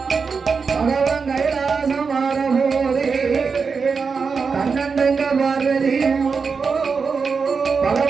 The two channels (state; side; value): quieter; left; 5.2 dB